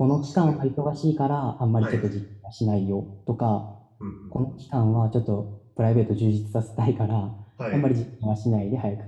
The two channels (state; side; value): identical; both; correlation 1.00